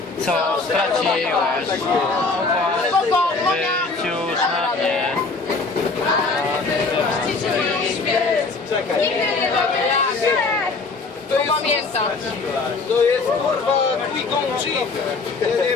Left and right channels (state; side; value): quieter; right; 3.9 dB